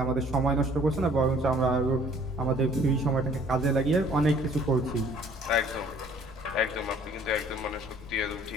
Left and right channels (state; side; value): noise; left; rumble, 17 dB below the sound